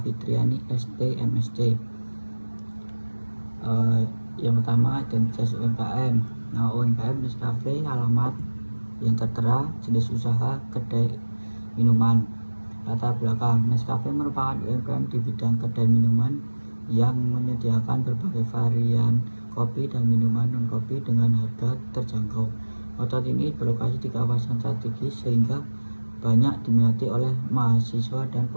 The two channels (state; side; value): inverted; both; correlation -1.00